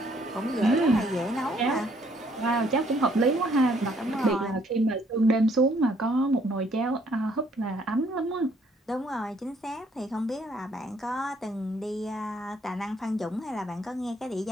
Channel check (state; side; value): normal; both; correlation 0.66